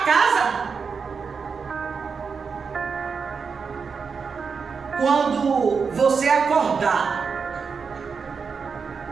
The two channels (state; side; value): quieter; left; 5.5 dB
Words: casa? Quando você acordar